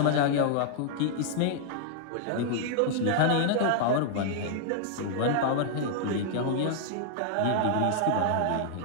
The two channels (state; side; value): different; both; correlation -0.01